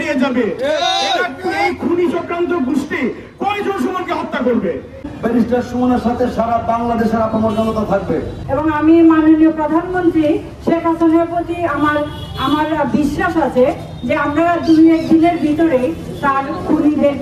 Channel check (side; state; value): both; identical; correlation 1.00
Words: যাবে। এই খুনি চক্রান্ত গোষ্ঠী কয়জন সুমনকে হত্যা করবে? ব্যারিস্টার সুমনের সাথে সারা বাংলাদেশের আপামর জনতা থাকবে। এবং আমি মাননীয় প্রধানমন্ত্রী শেখ হাসিনার প্রতি আমার বিশ্বাস আছে যে আমরা 2-1 দিনের ভিতরে তার